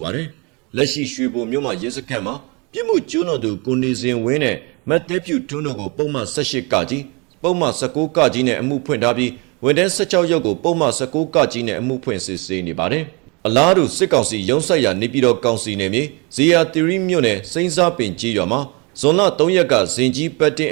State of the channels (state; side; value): quieter; left; 29.9 dB